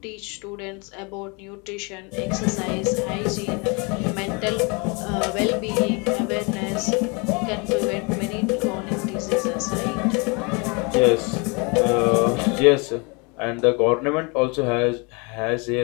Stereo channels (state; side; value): quieter; right; 31.0 dB